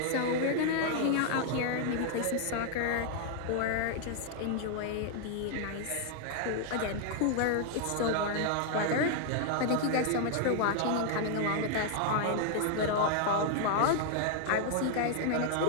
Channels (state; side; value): different; both; correlation 0.00